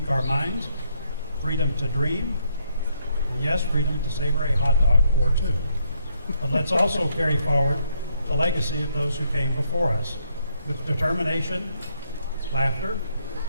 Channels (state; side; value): inverted; both; correlation -0.73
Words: our minds, freedom to dream, and yes, freedom to savor a hot dog or two. But let's also carry forward the legacy of those who came before us with determination, laughter,